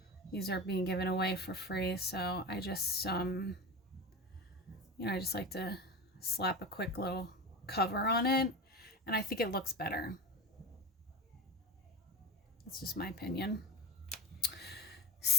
These are being given away for free, so I just, you know, I just like to slap a quick little cover on it, and I think it looks better. That's just my opinion.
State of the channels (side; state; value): both; normal; correlation 0.28